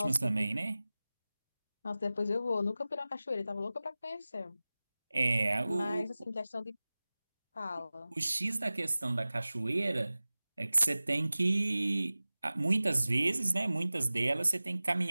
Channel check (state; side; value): inverted; both; correlation -0.97